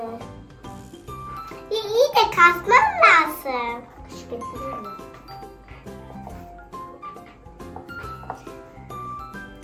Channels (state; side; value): identical; both; correlation 1.00